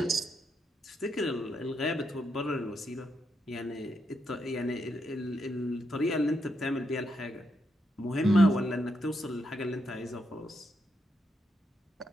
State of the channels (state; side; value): normal; both; correlation 0.81